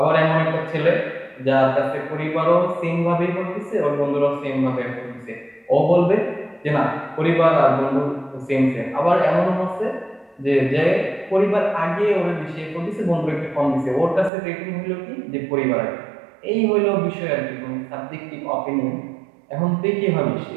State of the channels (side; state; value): left; drops out; at 14.3 s